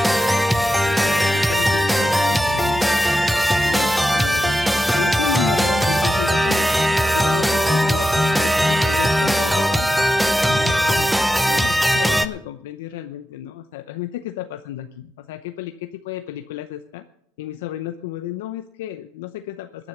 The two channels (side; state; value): both; normal; correlation 0.89